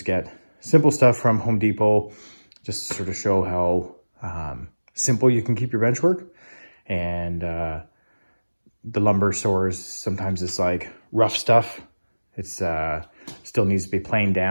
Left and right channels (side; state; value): both; inverted; correlation -1.00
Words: get simple stuff from Home Depot, just to sort of show how simple you can keep your bench work. And the lumber stores, sometimes it's like rough stuff. It's still needs to be planed